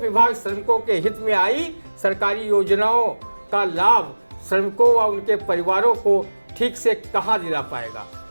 श्रमिकों के हित में आई सरकारी योजनाओं का लाभ श्रमिकों व उनके परिवारों को ठीक से कहाँ दिला पाएगा।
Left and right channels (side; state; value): both; inverted; correlation -1.00